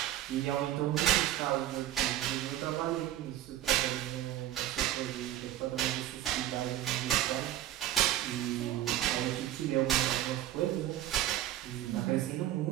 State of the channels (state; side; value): quieter; left; 13.0 dB